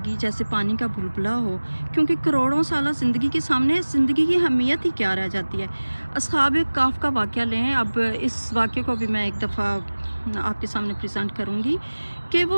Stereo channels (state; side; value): inverted; both; correlation -1.00